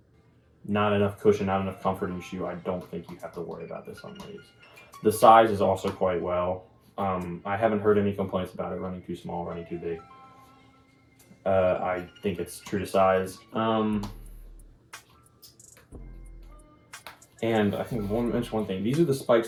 not enough cushion, not enough comfort in your shoe, I don't think you have to worry about this on these. The size is also quite well. I haven't heard any complaints about it running too small, running too big. I think it's true to size. And I think I want to mention one thing. These are the spikes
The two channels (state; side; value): identical; both; correlation 1.00